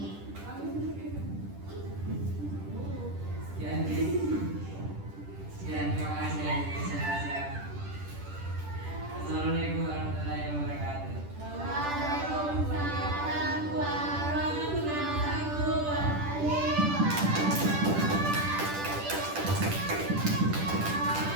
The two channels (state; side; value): late; left; 10 ms